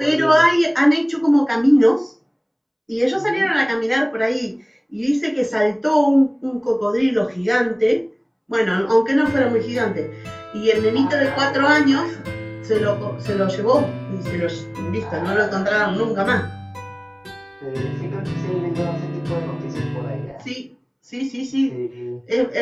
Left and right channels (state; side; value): identical; both; correlation 1.00